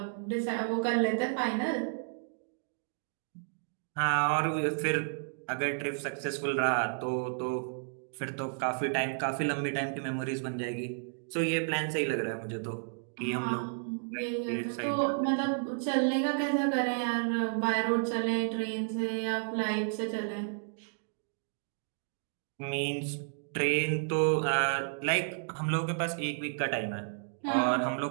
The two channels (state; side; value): silent; left; digital silence